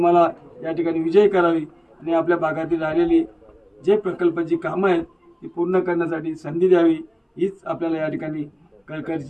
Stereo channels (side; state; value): both; identical; correlation 1.00